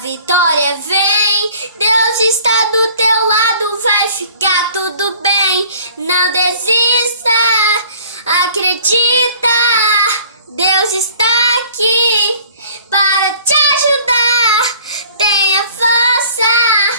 vem. Deus está do teu lado, vai ficar tudo bem. Não desista, acredita. Deus está aqui para te ajudar. Tenha força,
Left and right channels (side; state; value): both; inverted; correlation -0.51